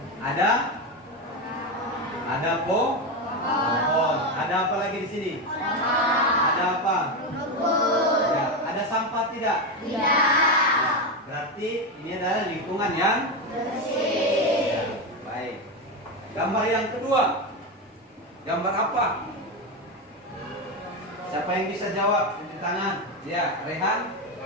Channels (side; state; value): both; normal; correlation 0.13